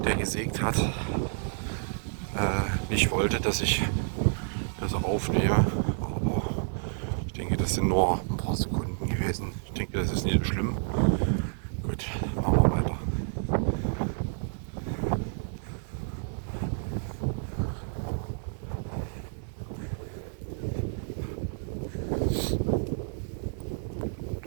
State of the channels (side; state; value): left; silent; digital silence